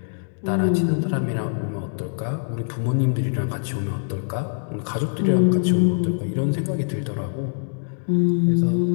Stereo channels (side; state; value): right; silent; digital silence